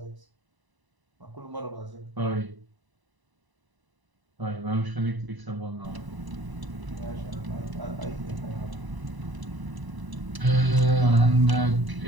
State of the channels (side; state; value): left; late; 1.0 ms